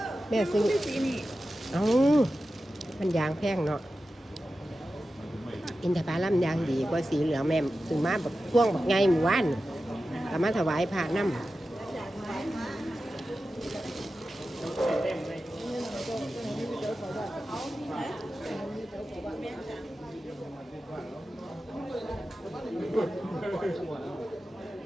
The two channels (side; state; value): both; normal; correlation 0.93